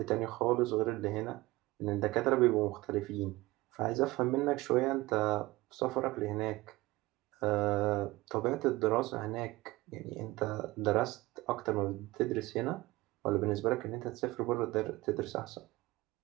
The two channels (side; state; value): left; quieter; 20.0 dB